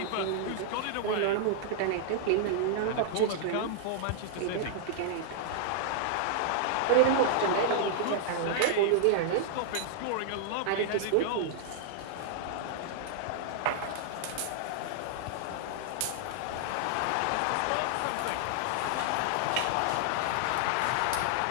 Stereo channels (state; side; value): different; both; correlation -0.01